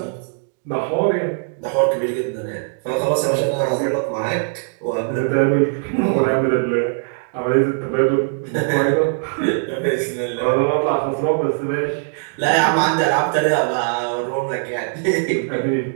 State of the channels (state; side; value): silent; left; digital silence